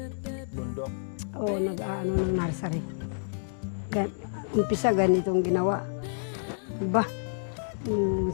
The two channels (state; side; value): silent; right; digital silence